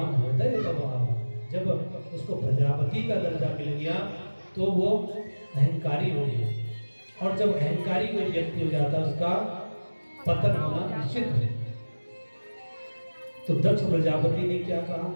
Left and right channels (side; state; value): both; inverted; correlation -1.00